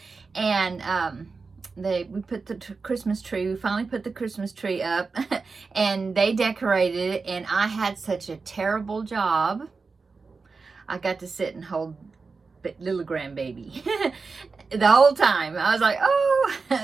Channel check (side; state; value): left; quieter; 4.4 dB